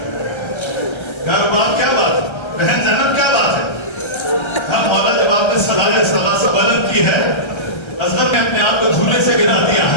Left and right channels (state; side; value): late; right; 1.3 ms